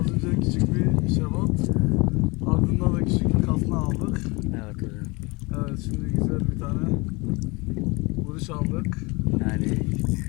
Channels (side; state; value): right; quieter; 26.0 dB